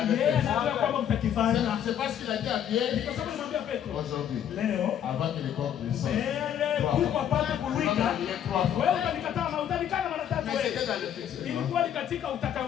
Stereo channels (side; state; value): right; quieter; 9.7 dB